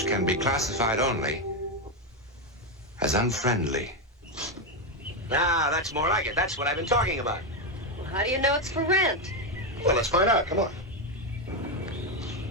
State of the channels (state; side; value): normal; both; correlation 0.08